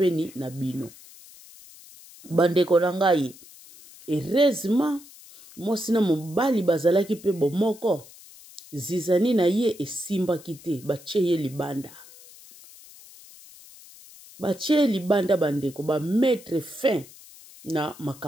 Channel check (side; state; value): left; noise; hiss, 21 dB below the sound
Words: na bino. Bandeko na ngai. Heureusement. Mosina mobali bazalaki pe bomoko. Zizani na ye esimba kite. Bache ye libanda. Bache libanda bandeko. Ba mettre fin. Na